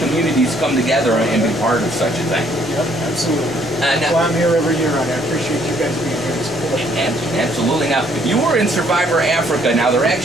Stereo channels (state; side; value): normal; both; correlation 0.65